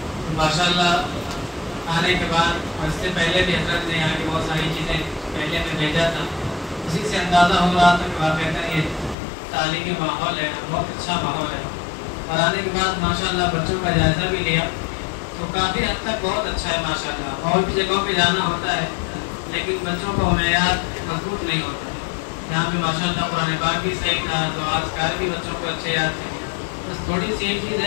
ماشاءاللہ آنے کے بعد اس سے پہلے بھی حضرت نے یہاں کی بہت ساری چیزیں پہلے میں بھیجا تھا، اسی سے اندازہ ہو رہا تھا کہ واقعتاً یہ تعلیمی ماحول ہے، بہت اچھا ماحول ہے۔ اور آنے کے بعد ماشاءاللہ بچوں کا جائزہ بھی لیا تو کافی حد تک بہت اچھا ہے ماشاءاللہ۔ اور بھی جگہوں پہ جانا ہوتا ہے لیکن بچوں کو معیار مضبوط نہیں ہوتا ہے، یہاں پہ ماشاءاللہ قرآن پاک بھی صحیح تھا، تو اذکار بھی بچوں کو اچھے یاد تھے۔ بس تھوڑی سی ایک چیز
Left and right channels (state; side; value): drops out; right; at 9.2 s